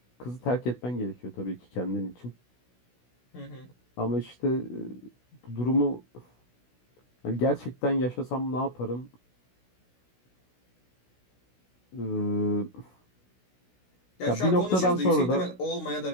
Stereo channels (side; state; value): right; late; 16 ms